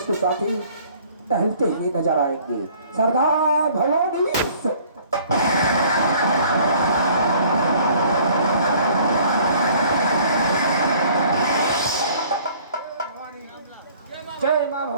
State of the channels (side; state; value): both; inverted; correlation -0.55